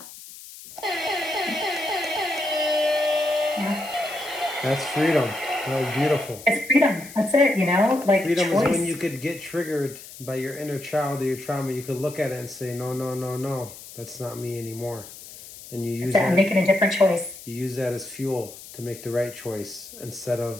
Yeah. That's freedom. That was beautiful. It's freedom. That's it, Freedom choice. is when you could get triggered by your inner child or your trauma. You could look at it and say, no, no, no, no, that's not me anymore. And you use I'm that. making a different choice. You use that as fuel to make the right choice instead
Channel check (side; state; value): left; noise; hiss, 16 dB below the sound